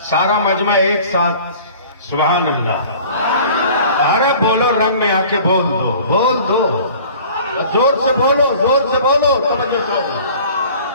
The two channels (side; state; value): both; inverted; correlation -0.47